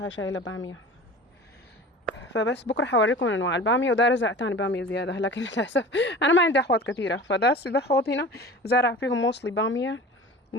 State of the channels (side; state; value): both; normal; correlation 0.38